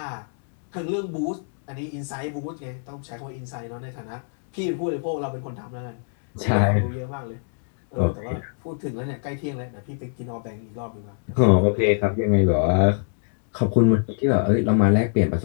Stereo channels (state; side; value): silent; right; digital silence